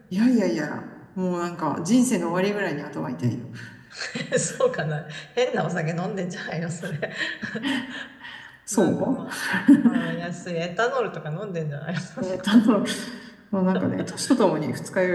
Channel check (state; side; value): identical; both; correlation 1.00